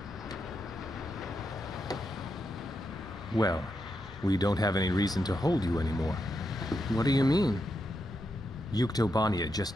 Well, we don't have any reason to hold you anymore. What do you mean? Yuktobania just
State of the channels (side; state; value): both; normal; correlation 0.84